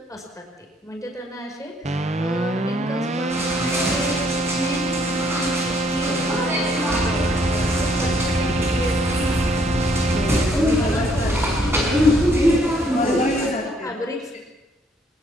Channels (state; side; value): normal; both; correlation 0.67